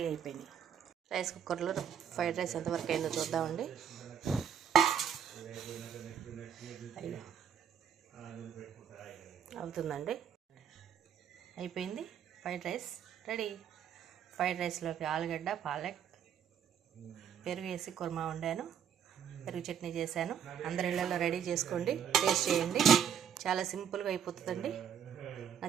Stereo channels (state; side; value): quieter; left; 8.2 dB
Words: అయిపోయినాయి. రైస్ కుక్కర్లో ఫ్రైడ్ రైస్ ఎంతవరకు అయిందో చూద్దామండి. అవుతుందండి, అయిపోయింది. Fried rice ready. ఫ్రైడ్ రైస్లోకి ఆలుగడ్డ, పాలక్, పెరుగు వేసి కుర్మా వండాను. పెరుగు చట్నీ చేశాను. అందరి ఇళ్ళల్లో రెడీ చేసుకోండి, టేస్ట్ చేయండి. చాలా సింపుల్గా అయిపోతుందండి. నా